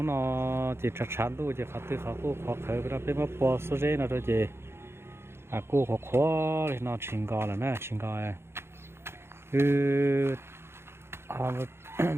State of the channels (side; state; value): left; late; 0.12 ms